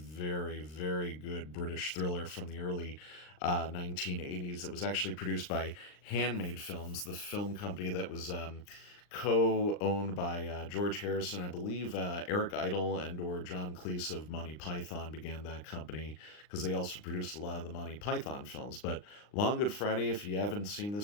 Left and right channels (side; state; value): right; late; 39 ms